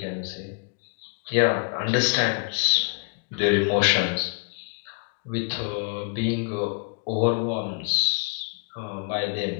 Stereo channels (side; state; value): right; quieter; 38.5 dB